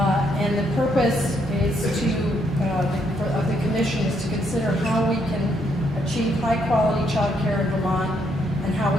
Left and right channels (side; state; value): both; normal; correlation 0.73